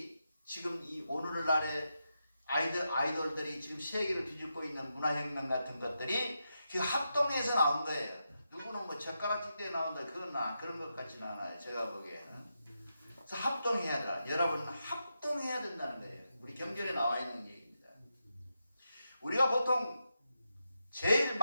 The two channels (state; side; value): inverted; both; correlation -0.86